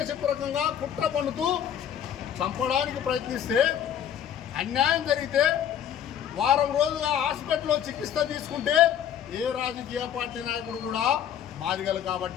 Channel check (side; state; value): right; quieter; 9.6 dB